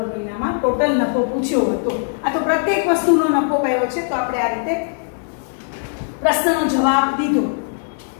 મહિનામાં ટોટલ નફો પૂછ્યો હતો. આ તો પ્રત્યેક વસ્તુનો નફો કયો છે તો આપણે આ રીતે પ્રશ્નનો જવાબ દીધો.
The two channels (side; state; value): right; silent; digital silence